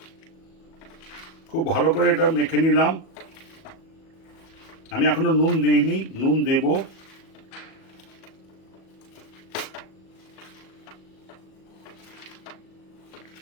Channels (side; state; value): right; late; 37 ms